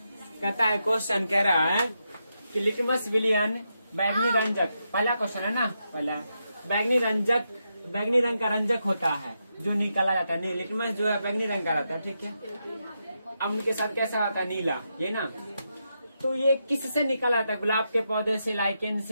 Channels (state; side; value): inverted; both; correlation -0.84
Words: कहता है क्वेश्चन कह रहा है कि लिटमस विलियन बैगनी रंजक, पहला क्वेश्चन है ना, पहला बैगनी रंग का रंजक होता है जो निकाला जाता है। नहीं, लिटमस जो है बैगनी रंग का रहता है, ठीक है। अम्ल के साथ कैसा होता है, नीला, ये ना। तो ये किससे निकाला जाता है, गुलाब के पौधे से, लाइकेन